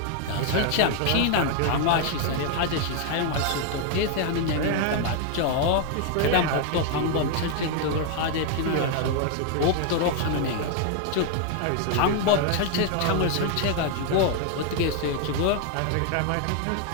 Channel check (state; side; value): different; both; correlation 0.00